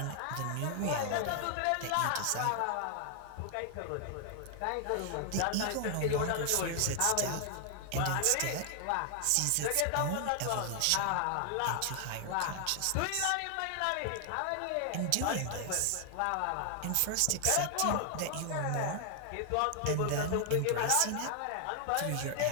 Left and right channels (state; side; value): different; both; correlation 0.00